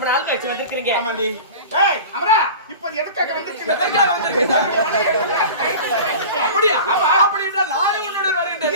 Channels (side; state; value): both; inverted; correlation -0.36